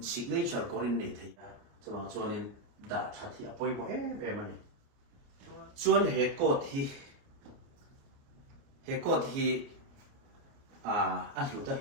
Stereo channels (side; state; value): left; late; 29 ms